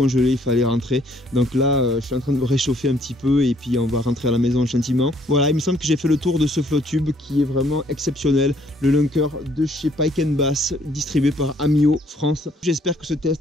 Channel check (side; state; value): both; normal; correlation 0.65